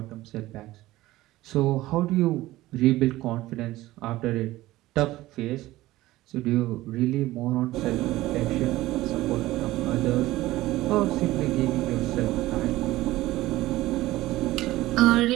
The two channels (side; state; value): left; quieter; 17.0 dB